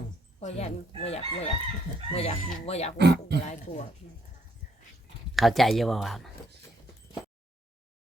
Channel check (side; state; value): both; normal; correlation 0.70